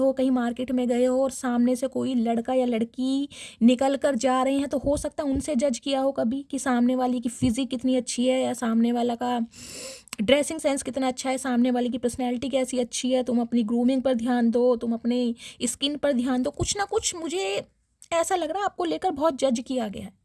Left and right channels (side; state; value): both; identical; correlation 1.00